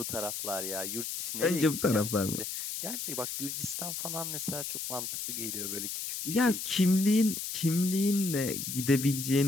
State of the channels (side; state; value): left; noise; hiss, 5 dB below the sound